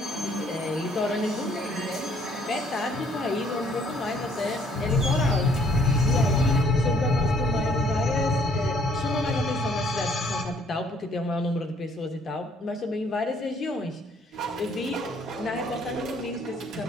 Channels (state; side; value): normal; both; correlation 0.63